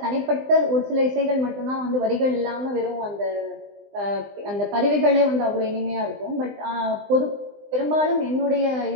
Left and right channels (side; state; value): left; late; 20 ms